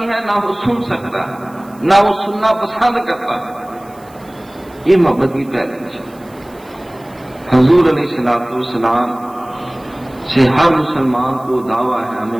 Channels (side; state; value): right; noise; hiss, 28 dB below the sound